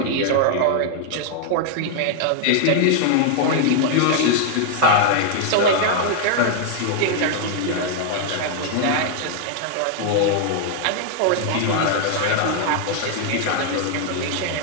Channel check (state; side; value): different; both; correlation 0.00